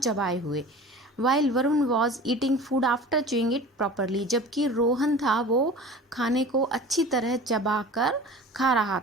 हुए. While Varun was eating food after chewing it properly, जबकि रोहन था वो खाने को अच्छी तरह चबा कर खा रहा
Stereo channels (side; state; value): both; normal; correlation 0.39